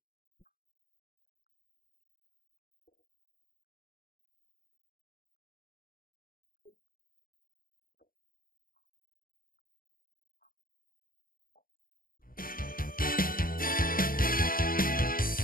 Southwest Youth Parliament advocate adequate security, youth empowerment. Details of these and many more stories will be coming your way shortly. I'm Joshua Oguji, your host.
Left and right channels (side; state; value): right; late; 0.41 ms